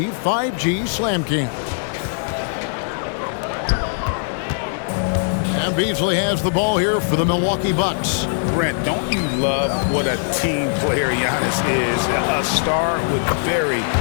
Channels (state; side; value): silent; right; digital silence